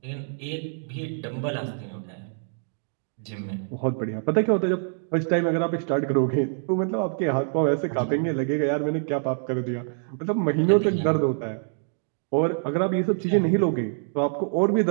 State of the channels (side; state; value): left; silent; digital silence